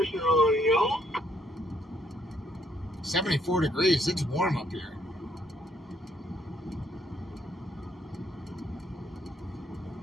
on, y'all. 74 degrees. It's warm up here.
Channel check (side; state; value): both; normal; correlation 0.69